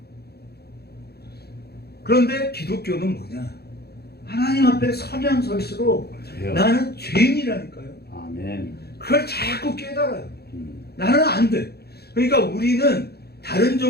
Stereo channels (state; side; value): late; right; 0.47 ms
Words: 그런데 기독교는 뭐냐? 하나님 앞에 서면 설수록 돼요. 나는 죄인이라니까요. 아멘. 그걸 자꾸 깨달아요. 나는 안 돼. 그러니까 우리는 다른